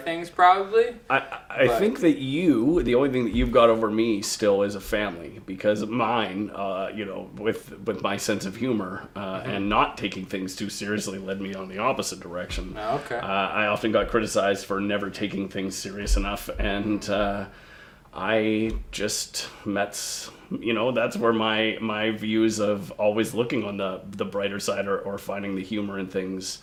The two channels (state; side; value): identical; both; correlation 1.00